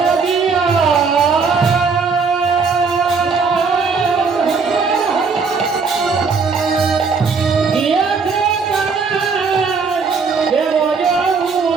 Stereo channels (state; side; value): quieter; left; 5.0 dB